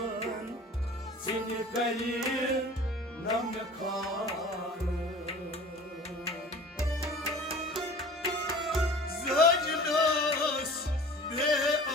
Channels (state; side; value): normal; both; correlation 0.42